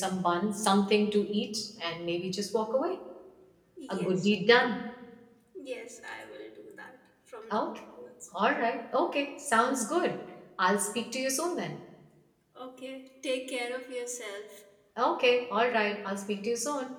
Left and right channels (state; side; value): identical; both; correlation 1.00